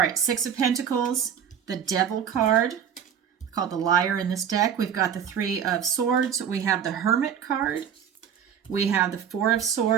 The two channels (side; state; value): left; quieter; 8.3 dB